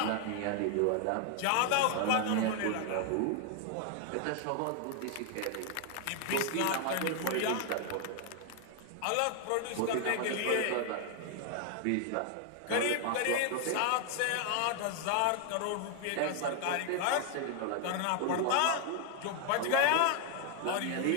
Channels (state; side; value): different; both; correlation 0.00